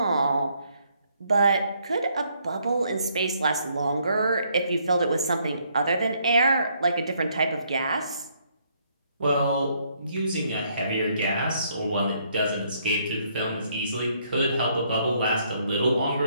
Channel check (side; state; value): both; inverted; correlation -0.70